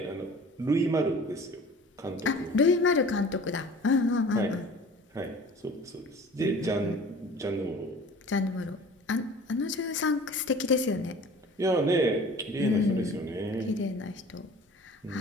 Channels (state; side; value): normal; both; correlation 0.44